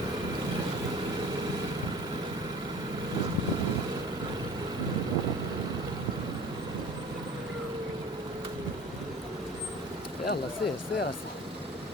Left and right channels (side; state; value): both; normal; correlation 0.43